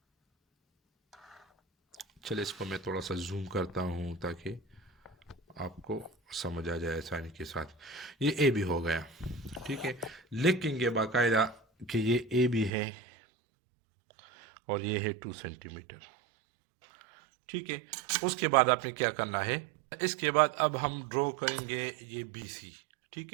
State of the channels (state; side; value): drops out; left; at 12.7 s